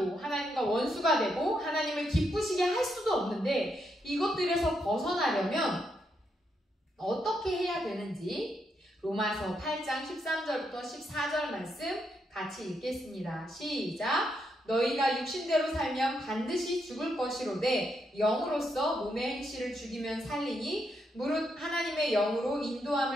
하나님과 원수가 되고 하나님을 기쁘시게 할 수도 없는데 이것들에서 벗어나려면 어떻게 해야 되는지 로마서 8장 13절부터 14절 말씀 같이 읽겠습니다. 시작! 너희가 육신대로 살면 반드시 죽을 것이로되 영으로서 몸의 행실을 죽이면 살리니 무릇 하나님의 영으로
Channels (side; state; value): both; normal; correlation 0.80